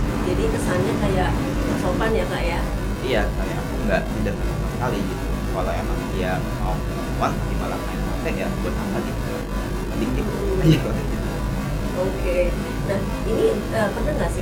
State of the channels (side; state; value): both; identical; correlation 1.00